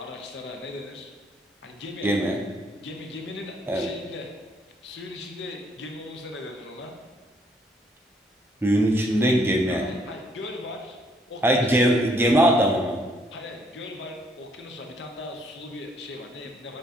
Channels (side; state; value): both; normal; correlation 0.68